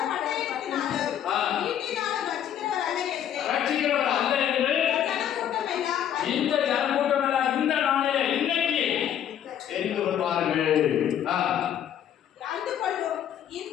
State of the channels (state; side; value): quieter; right; 10.0 dB